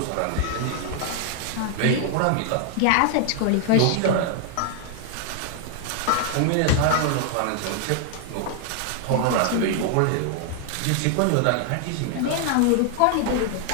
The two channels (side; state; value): both; different; correlation 0.00